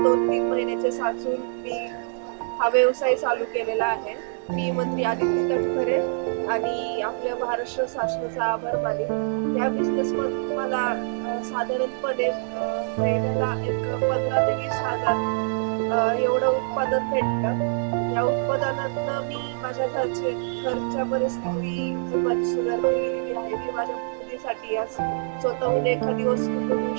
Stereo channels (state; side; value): silent; left; 62 dB below the other